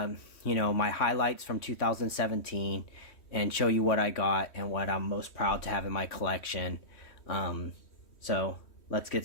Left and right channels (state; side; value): late; right; 3.1 ms